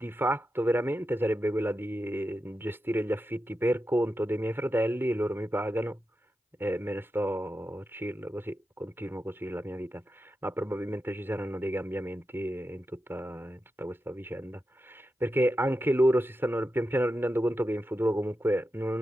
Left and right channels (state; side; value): normal; both; correlation 0.90